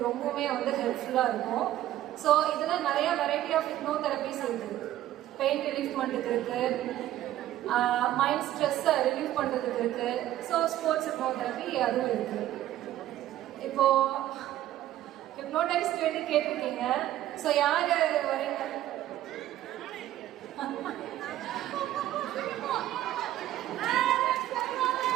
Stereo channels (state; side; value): quieter; left; 13.5 dB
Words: ரொம்பவுமே வந்து ஹெல்ப்ஃபுல்லா இருக்கும். ஸோ இதுல நிறைய வெரைட்டி ஆஃப் ஹிப்னோதெரபிஸ் இருக்கு. பெயின் ரிலீஃப் பண்ணுறதுக்கு இருக்கு, மைண்ட் ஸ்ட்ரெஸ்ஸை ரிலீஃப் பண்ணுறதுக்கு இருக்கு. ஸோ ஸ்போர்ட்ஸ் ஹிப்னோதெரபி அதுவும் இருக்கு. இப்போ ஹிப்னோடைஸ் கேட்டிருக்கீங்க. ஸோ யார் வரீங்க?